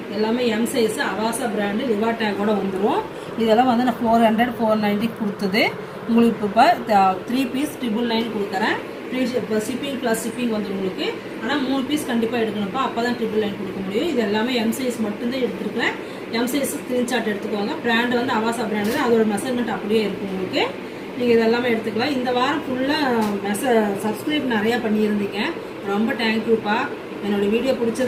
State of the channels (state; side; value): identical; both; correlation 1.00